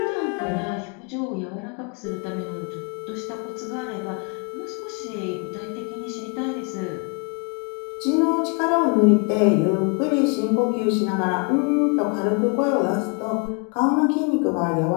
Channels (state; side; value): quieter; right; 33.6 dB